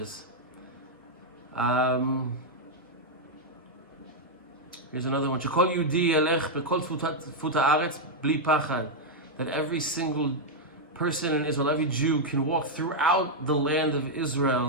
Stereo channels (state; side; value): normal; both; correlation -0.02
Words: Here's another one. שכל יהודי ילך בכל תפות הארץ בלי פחד. That every single person in Israel, every Jew, can walk throughout the land of